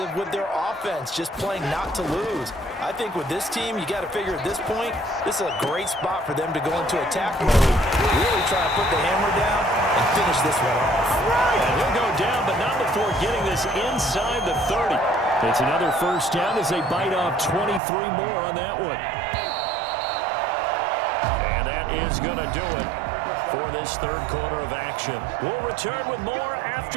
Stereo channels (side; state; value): left; drops out; at 17.8 s